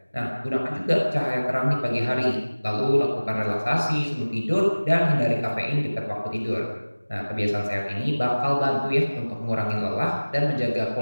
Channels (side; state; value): both; inverted; correlation -1.00